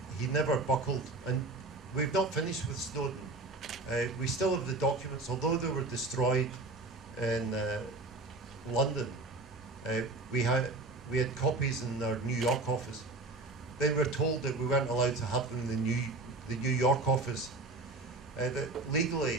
he never buckled. And we've not finished with Snowden. We still have the documents, although they were destroyed in London. We had copies in our New York office. Then we were told that we weren't allowed to have them in the New York office. That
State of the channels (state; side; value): quieter; left; 3.1 dB